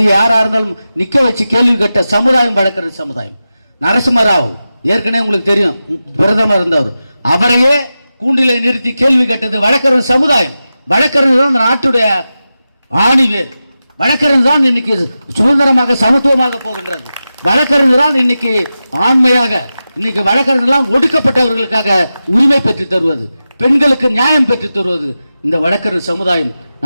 யாரா இருந்தாலும் நிக்க வச்சு கேள்வி கேட்ட சமுதாயம் வழக்கறிஞர் சமுதாயம். நரசிம்மராவ் ஏற்கனவே உங்களுக்கு தெரியும், பிரதமர் இருந்தவர், அவரையே கூண்டிலே நிறுத்தி கேள்வி கேட்டது வழக்கறிஞர் சமுதாயம். வழக்கறிஞர் தான் இந்த நாட்டுடைய ஆணிவேர். வழக்கறிஞர் தான் இன்னைக்கு சுதந்திரமாக சமத்துவமாக போகின்றது. வழக்கறிஞர் தான் இன்னைக்கு ஆண்மையாக, இன்னைக்கு வழக்கறிஞர்லாம் ஒடுக்கப்பட்டவர்களுக்காக உரிமை பெற்று தருவது, பெண்களுக்கு நியாயம் பெற்று தருவது இந்த வழக்கறிஞர் சமுதாயம்.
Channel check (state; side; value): inverted; both; correlation -0.93